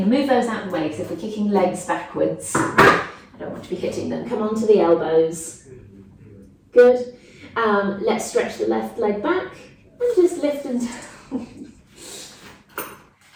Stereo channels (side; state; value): both; identical; correlation 1.00